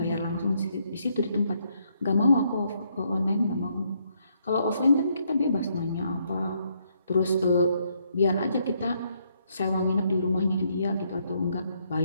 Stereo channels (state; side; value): inverted; both; correlation -0.73